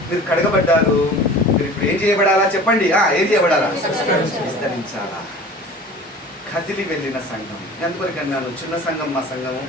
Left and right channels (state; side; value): normal; both; correlation 0.42